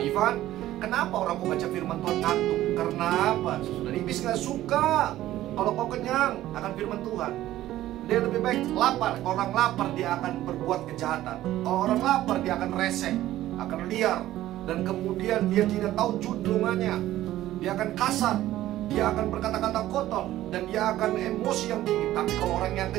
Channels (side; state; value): left; quieter; 14.4 dB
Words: Ivan, kenapa orang kau baca firman Tuhan ngantuk? Karena apa? Sudah iblis gak suka kalau kau kenyang akan firman Tuhan. Dia lebih baik lapar. Kalau orang lapar dia akan berbuat kejahatan. Kalau orang lapar dia akan resek, akan liar, dan kemudian dia tidak tahu juntrungannya. Dia akan kasar, dia akan berkata-kata kotor, dan dia akan emosi yang tinggi. Tapi kalau orang yang